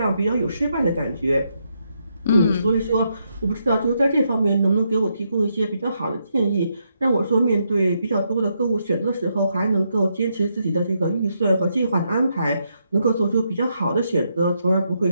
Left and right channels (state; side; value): inverted; both; correlation -0.79